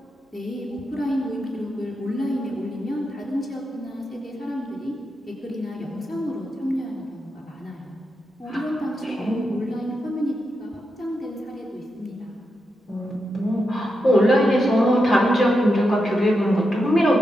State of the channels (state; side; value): normal; both; correlation 0.86